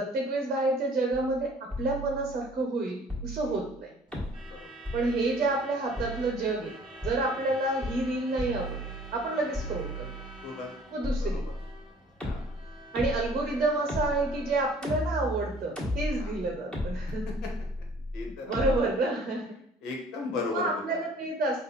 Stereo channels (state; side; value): normal; both; correlation 0.53